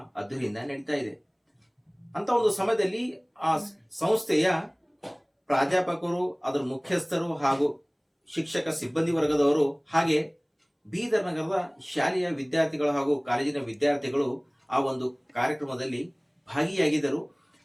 ಅದ್ದೂರಿಯಿಂದ ನಡೀತಾ ಇದೆ. ಅಂತ ಒಂದು ಸಮಯದಲ್ಲಿ ಆ ಸಂಸ್ಥೆಯ ಪ್ರಾಧ್ಯಾಪಕರು, ಅದರ ಮುಖ್ಯಸ್ಥರು ಹಾಗೂ ಶಿಕ್ಷಕ ಸಿಬ್ಬಂದಿ ವರ್ಗದವರು ಹಾಗೆ ಬೀದರ್ ನಗರದ ಶಾಲೆಯ ವಿದ್ಯಾರ್ಥಿಗಳು ಹಾಗೂ ಕಾಲೇಜಿನ ವಿದ್ಯಾರ್ಥಿಗಳು ಆ ಒಂದು ಕಾರ್ಯಕ್ರಮದಲ್ಲಿ ಭಾಗಿಯಾಗಿದ್ದರು.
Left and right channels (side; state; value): both; identical; correlation 1.00